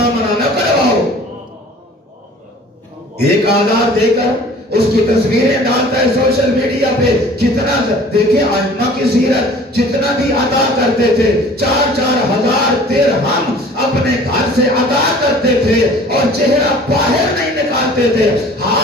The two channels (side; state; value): both; normal; correlation 0.48